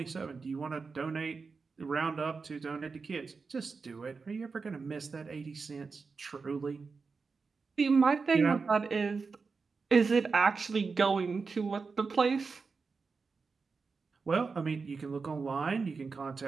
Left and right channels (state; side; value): quieter; left; 4.7 dB